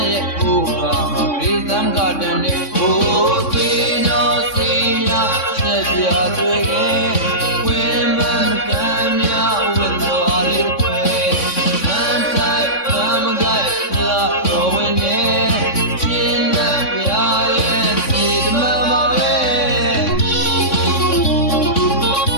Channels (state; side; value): late; right; 3.6 ms